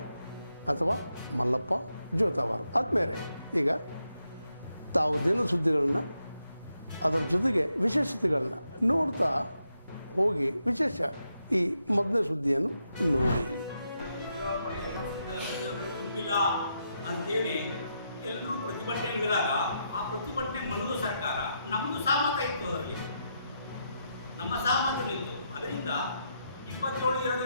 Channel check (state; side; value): inverted; both; correlation -0.82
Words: ಅಥವಾ ಮಲ್ಲಪ್ಪ ಜೋತಾವಾರ್. ಆದ್ಮೇಲೆ ಈಗ ತಾವು ದಿನ ಸುದ್ದಿಗಳನ್ನು ಅದರ ಜೊತೆಗೆ ವಿಶೇಷತೆಗಳನ್ನ ನೋಡ್ತಾ ಹೋಗಿ ವಿಶೇಷ ಈ ಮೊದಲನೇ ಸುದ್ದಿಯನ್ನು ನೋಡಿ. ತುಂಬಿಲ್ಲ ಅಂತೇಳಿ ಎಲ್ಲರೂ ಪ್ರತಿಭಟನೆ ಇಳಿದಾಗ ಆ ಪ್ರತಿಭಟನೆ ಮನದು ಸರ್ಕಾರ ನಮ್ಮದು ಸಹಮತ ಇತ್ತು, ಅದರಲ್ಲಿ ನಮ್ಮ ಸಹಮತಗಳಿತ್ತು. ಅದರಿಂದ